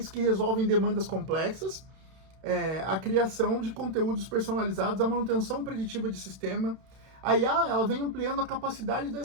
que resolvem demandas complexas, a criação de conteúdos personalizados, a manutenção preditiva de sistema. A IA ela vem ampliando a capacidade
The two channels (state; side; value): late; left; 31 ms